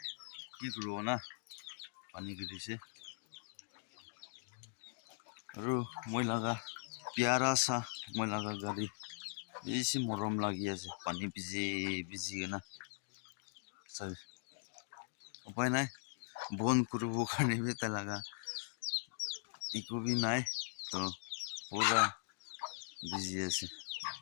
কি করব না পানি গিরিছে আৰু মই লাগা প্যারা সা মই লাগা গাড়ি বেশি মরম লাগি আছে পানি ভিজে ভিজি না সব উপায় নাই বন করব কারণে বেতা লাগা ইকো বি নাই তো পুরা ভিজি আছে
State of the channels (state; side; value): silent; right; digital silence